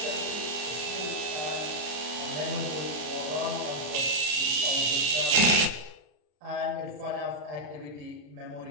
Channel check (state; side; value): late; left; 34 ms